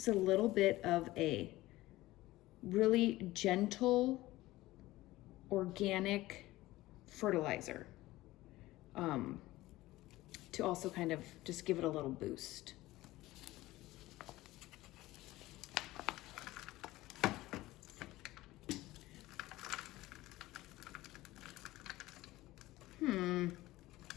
a little bit of a really gentle, organic fertilizer to also kind of just give it a little boost.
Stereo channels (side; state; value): right; quieter; 17.7 dB